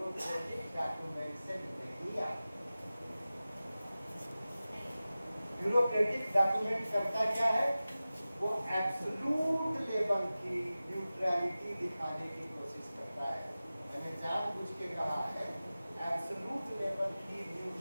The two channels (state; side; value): inverted; both; correlation -0.96